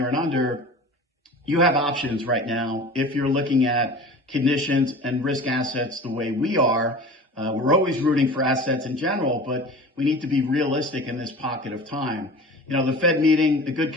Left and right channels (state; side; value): normal; both; correlation 0.38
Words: and under, you have options right now if you're looking at conditions and risk assets the way we are. We're always rooting for assets in general, but we need to be realistic in this pocket of time. The Fed meeting, a good